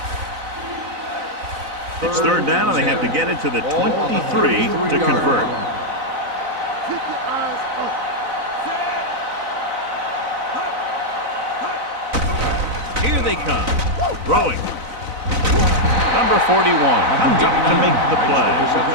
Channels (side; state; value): left; late; 4.0 ms